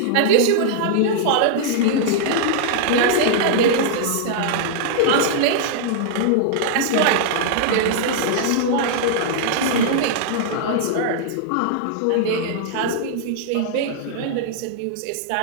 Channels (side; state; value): both; different; correlation -0.01